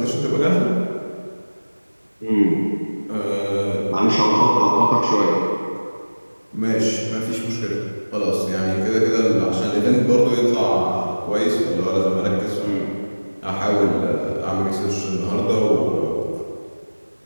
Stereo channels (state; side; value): inverted; both; correlation -1.00